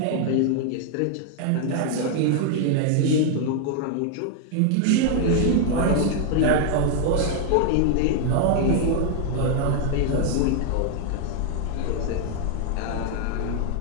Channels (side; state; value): both; different; correlation 0.00